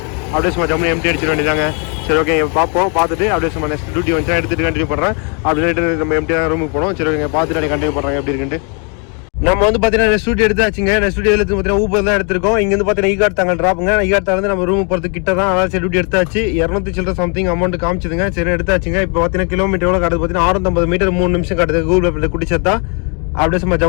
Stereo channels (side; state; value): right; quieter; 37.1 dB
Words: அப்படியே சும்மா ஜம்முனி எம்டி அடிச்சிட வேண்டியதாங்க. சரி ஓகே பார்ப்போம். பார்த்துட்டு அப்படியே சும்மா நெக்ஸ்ட் டியூட்டி வந்துச்சா எடுத்துகிட்டு கண்டினியூ பண்ணுறேன். அப்படின்னு நம்ம எம்டியாக ரூமுக்கு போனோம். சரி ஓகே பார்த்துட்டு அப்படியே கண்டினியூ பண்ணுறாங்க எப்படி இருக்குன்ட்டு. நம்ம வந்து பார்த்தீங்கன்னா ஸ்டுடியோ எடுத்தாச்சுங்க. ஸ்டுடியோ எடுத்து பார்த்தீங்கன்னா ஊபர் தான் எடுத்திருக்கோம். இங்கேருந்து பார்த்தீங்கன்னா ஈகாட் தாங்க ட்ராப்புங்க. ஈகாட் தாங்க நம்ம ரூம் போகிறது கிட்ட தான். அதாவது சரி டியூட்டி எடுத்தாச்சு. 200 சில்லற சம்திங் அமௌண்ட் காமிச்சதுங்க. சரி எடுத்தாச்சுங்க. இப்போ பார்த்தீங்கன்னா கிலோமீட்டர் எவ்வளோ காட்டுது பார்த்தீங்கன்னா 650 மீட்டர் 3 நிமிஷம் காட்டுது. கூகுள் மேப்பில் குடிச்சதா அப்படியே சும்மா